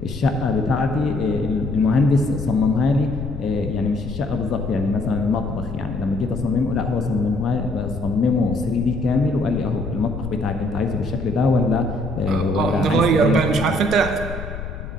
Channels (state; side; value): noise; left; rumble, 9 dB below the sound